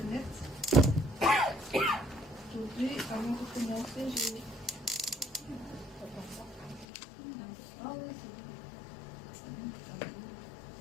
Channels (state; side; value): drops out; right; at 6.9 s